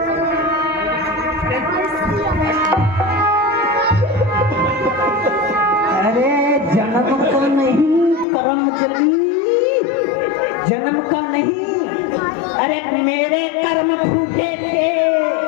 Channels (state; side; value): drops out; right; at 8.2 s